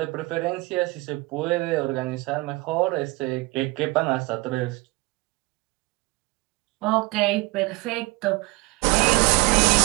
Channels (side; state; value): left; quieter; 23.1 dB